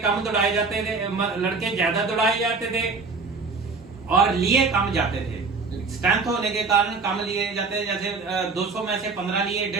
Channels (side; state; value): left; quieter; 4.3 dB